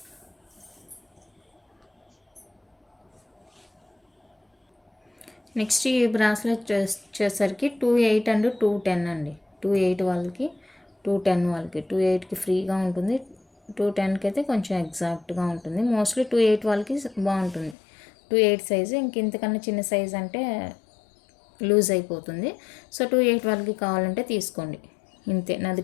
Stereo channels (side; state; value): right; drops out; at 17.8 s